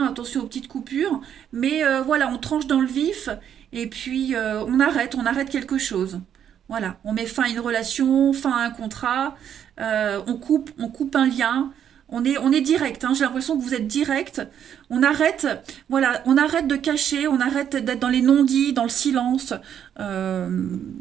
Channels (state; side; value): quieter; left; 9.2 dB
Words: attention aux petites coupures, mais voilà, on tranche dans le vif, et puis on arrête quelque chose. Voilà, on met fin à une relation, fin à un contrat, on coupe un lien, on est direct, hein, j'ai l'impression que vous êtes direct. On arrête, voilà, on arrête de cacher, on arrête d'être dans les non-dits, dans le silence. Euh,